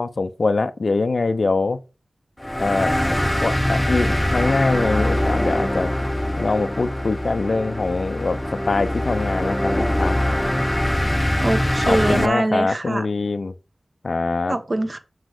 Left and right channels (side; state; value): both; normal; correlation 0.98